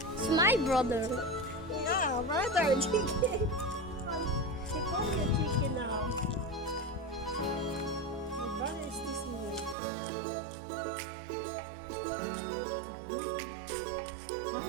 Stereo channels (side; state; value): left; drops out; at 9.8 s